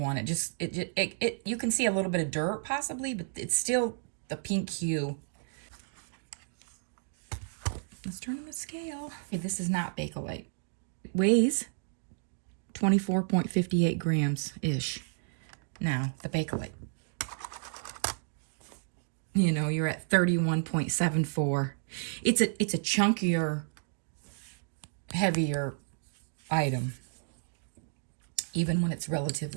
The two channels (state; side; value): silent; left; digital silence